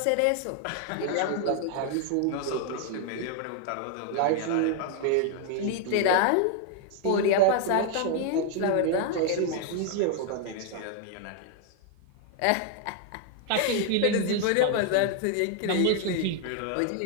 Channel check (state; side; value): different; both; correlation 0.00